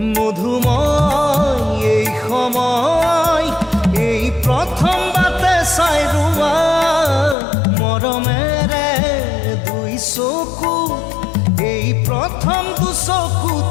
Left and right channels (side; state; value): right; drops out; at 7.4 s